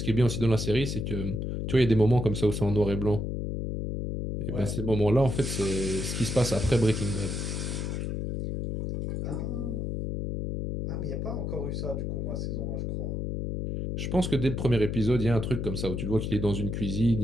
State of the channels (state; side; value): noise; left; hum, 2 dB below the sound